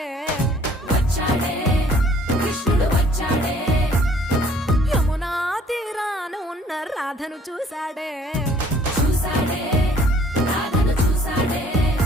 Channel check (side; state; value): both; normal; correlation 0.58